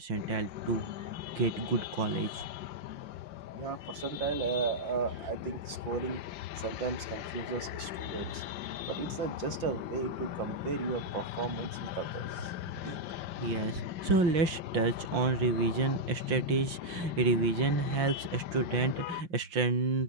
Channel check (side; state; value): left; late; 5.7 ms